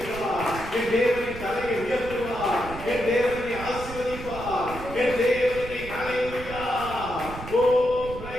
என் தேவனின் தலையை உயர்த்துவார். என் தேவனை ஆசீர்வதிப்பார். என் தேவனை ஹல்லேலூயா. ஓ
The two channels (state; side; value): noise; right; rumble, 12 dB below the sound